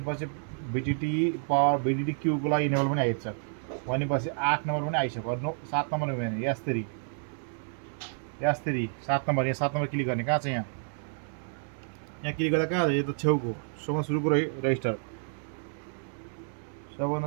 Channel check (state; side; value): silent; left; 58 dB below the other